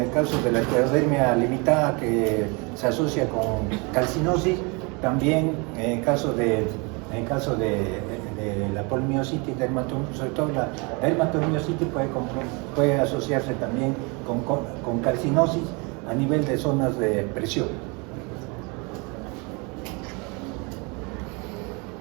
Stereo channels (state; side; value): quieter; left; 30.2 dB